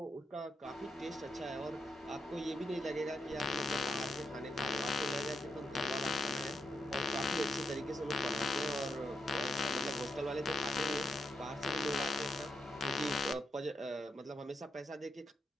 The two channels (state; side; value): normal; both; correlation 0.83